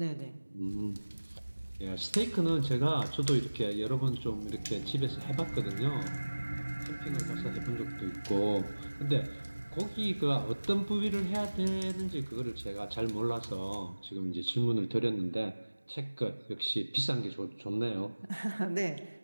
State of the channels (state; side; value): inverted; both; correlation -1.00